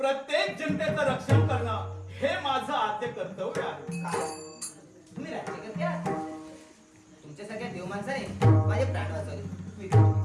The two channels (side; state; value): both; identical; correlation 1.00